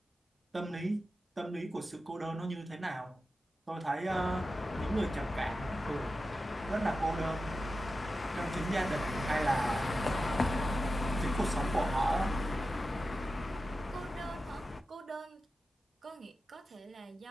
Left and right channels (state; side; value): normal; both; correlation 0.92